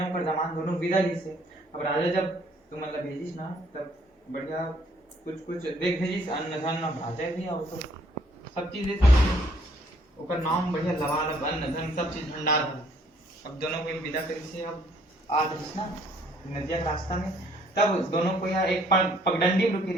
पर जमान दोनों विदा ली से। अब राजा जब तुम मतलब भेजिस ना तब बढ़िया कुछ देख भेजिस अन्न धन राजा भी और तो सब चीज दे सकते ओकर नाम बढ़िया लवालब अन्न धन सब चीज भंडार है। अब दोनों को विदा करी से अब आ रही ना नदिया के रास्ता में। तब दोनों को यहाँ एक पगडंडी में रुकी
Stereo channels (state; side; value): normal; both; correlation 0.63